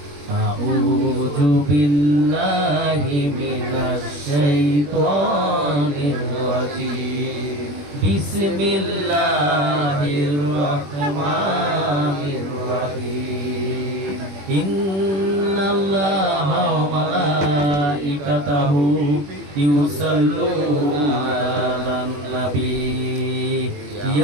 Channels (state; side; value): late; left; 21 ms